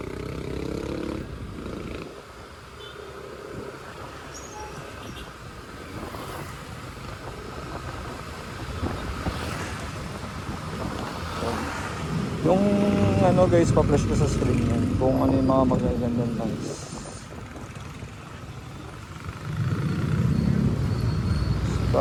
Yung ano guys, pa-flash ko sa screen yan kung ano yung mga magagandang lines.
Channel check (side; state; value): both; identical; correlation 1.00